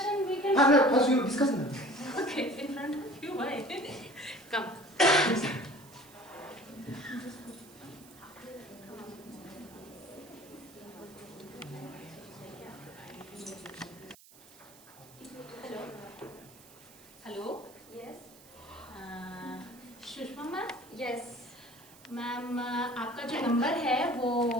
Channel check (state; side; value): noise; right; hiss, 22 dB below the sound